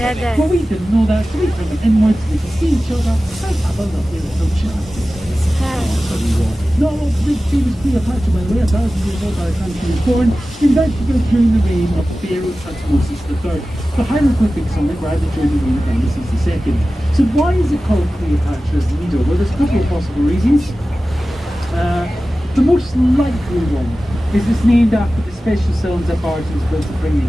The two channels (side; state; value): both; normal; correlation 0.95